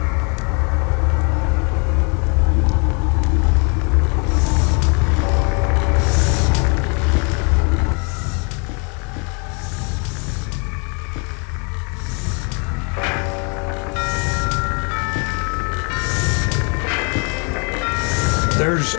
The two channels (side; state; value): right; quieter; 35.1 dB